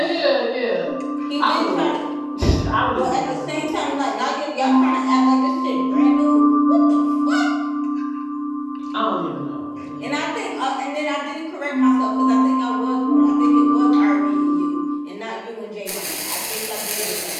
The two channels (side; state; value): both; identical; correlation 1.00